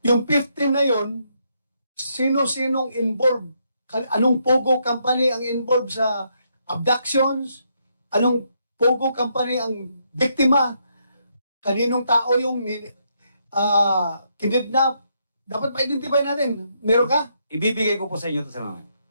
Yung 15 na yon, sino-sinong involved? Anong POGO company ang involved sa abductions? Anong POGO company ang biktima? Kaninong tao yung kidnap? Dapat ma-identify natin. Meron ka? Ibibigay ko po sa inyo ito sa mga.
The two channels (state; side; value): inverted; both; correlation -0.76